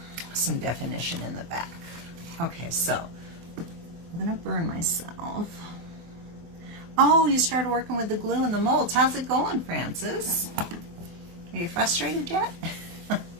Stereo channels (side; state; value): left; late; 24 ms